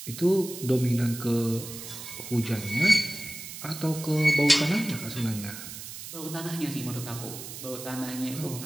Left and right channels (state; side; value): noise; right; hiss, 11 dB below the sound